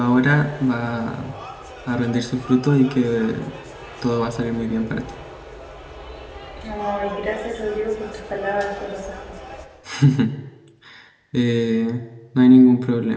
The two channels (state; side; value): identical; both; correlation 1.00